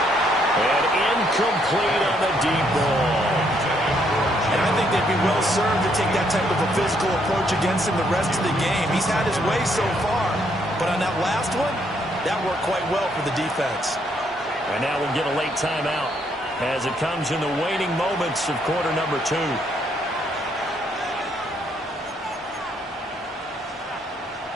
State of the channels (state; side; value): normal; both; correlation 0.71